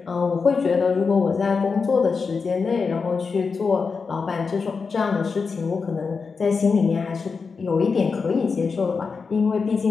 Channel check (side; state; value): right; quieter; 5.0 dB